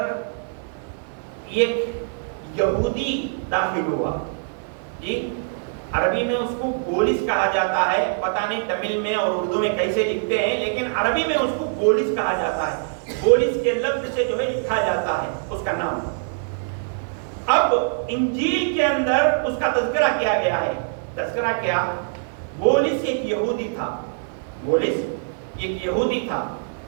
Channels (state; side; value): silent; left; 63 dB below the other